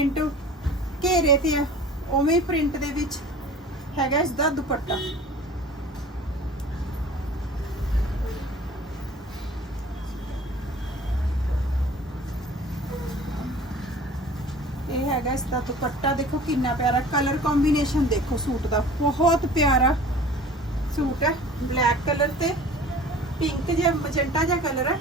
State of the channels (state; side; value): normal; both; correlation 0.44